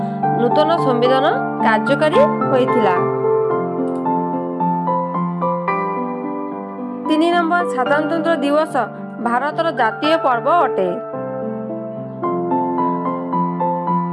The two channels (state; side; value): identical; both; correlation 1.00